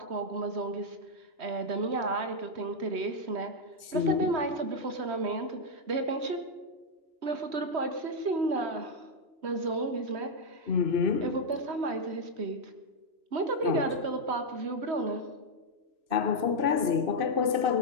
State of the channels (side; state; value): left; late; 2.6 ms